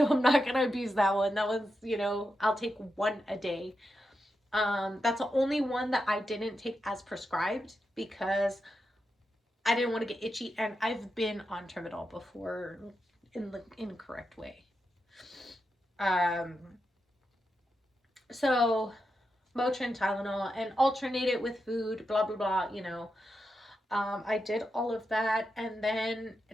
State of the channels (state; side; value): normal; both; correlation 0.87